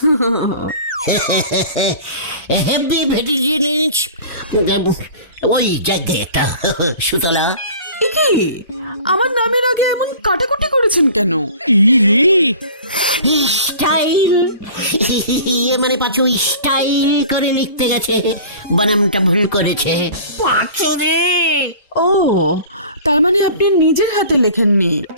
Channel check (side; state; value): both; inverted; correlation -0.43